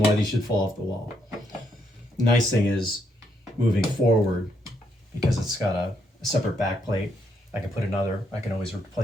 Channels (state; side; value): normal; both; correlation 0.76